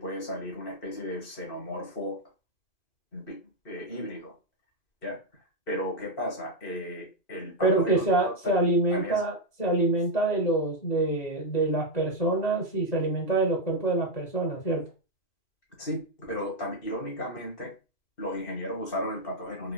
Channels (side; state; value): right; late; 2.6 ms